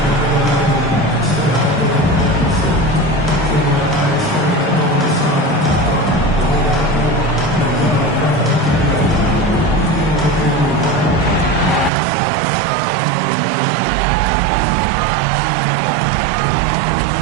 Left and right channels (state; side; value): drops out; left; at 11.9 s